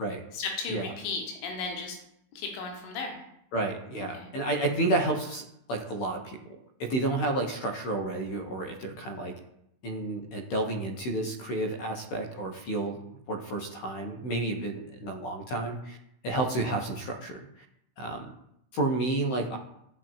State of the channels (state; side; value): late; right; 16 ms